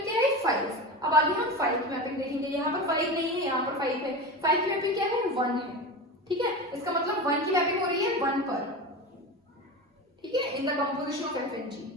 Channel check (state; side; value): normal; both; correlation 0.26